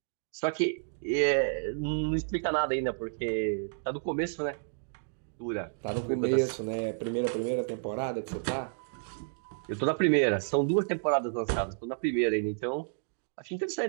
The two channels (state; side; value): silent; left; digital silence